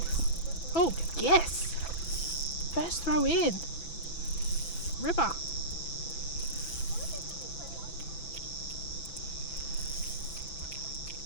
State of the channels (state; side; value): late; right; 6.0 ms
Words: oh, yes! First throw in. Ripper.